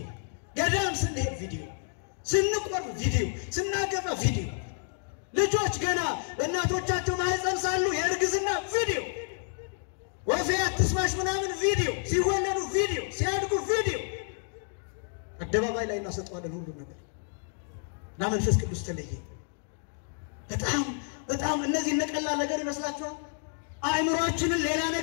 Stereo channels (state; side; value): silent; right; 58 dB below the other